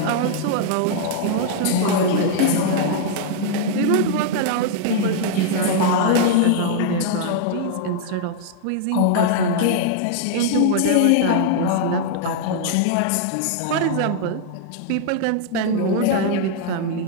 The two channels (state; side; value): different; both; correlation -0.01